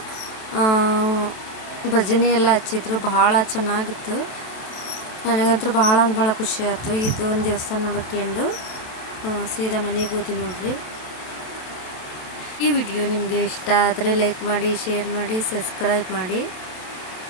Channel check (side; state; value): right; late; 27 ms